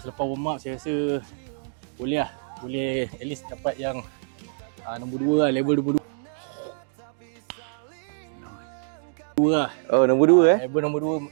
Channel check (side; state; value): left; silent; digital silence